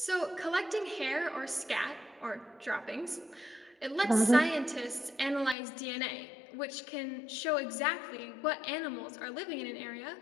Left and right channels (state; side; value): drops out; right; at 5.6 s